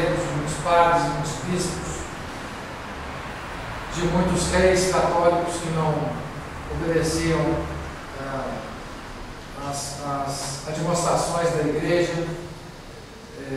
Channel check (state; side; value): identical; both; correlation 1.00